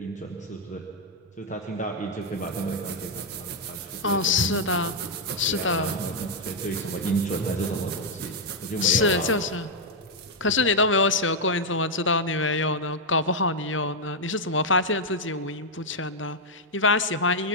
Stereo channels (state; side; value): normal; both; correlation -0.02